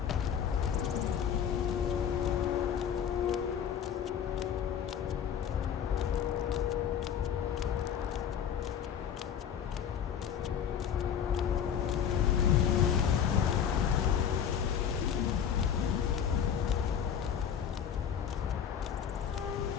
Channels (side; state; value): right; quieter; 8.4 dB